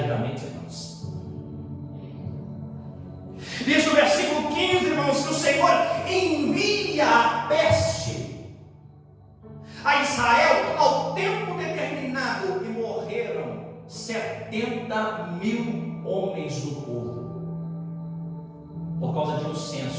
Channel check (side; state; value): both; identical; correlation 1.00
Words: irmãos. Diz o versículo 15, irmãos, que o Senhor envia a peste a Israel ao tempo determinado e morreram 70.000 homens do povo, por causa de um